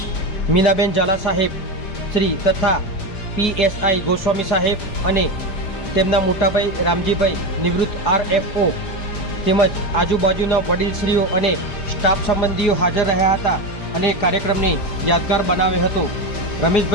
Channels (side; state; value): right; late; 5.0 ms